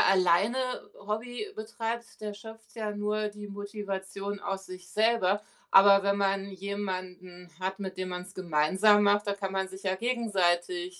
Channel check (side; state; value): both; identical; correlation 1.00